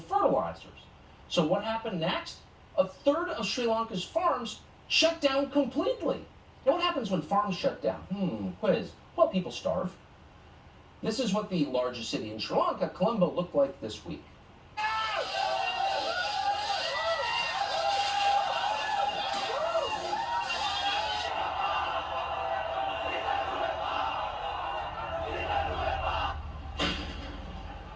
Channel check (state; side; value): identical; both; correlation 1.00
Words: So what happened next? A third of Sri Lanka's farms shut down completely. Now, what happens when farms shut down? Quiz. Well, people starve. This is what the largest city in Sri Lanka, Colombo, looked like this week.